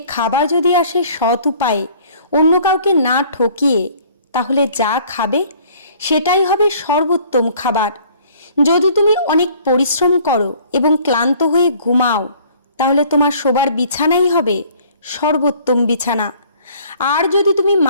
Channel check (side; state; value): both; inverted; correlation -0.55